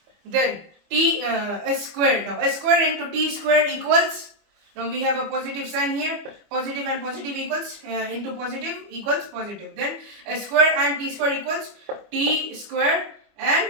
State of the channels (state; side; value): late; left; 25 ms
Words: Then s squared. Now s squared into t squared equals, now we have a positive sign here. Positive and positive equals into positive equals positive. Then s squared and t squared equals t squared